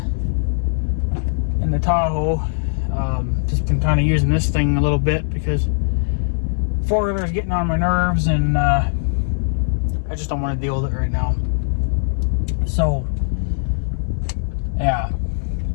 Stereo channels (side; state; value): right; silent; digital silence